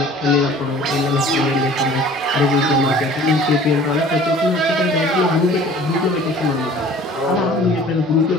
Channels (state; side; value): normal; both; correlation 0.48